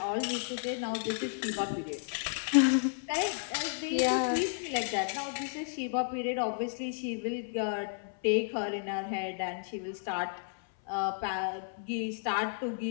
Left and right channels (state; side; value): silent; right; 56 dB below the other